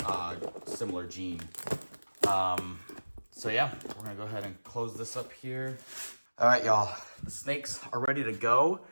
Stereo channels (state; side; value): inverted; both; correlation -1.00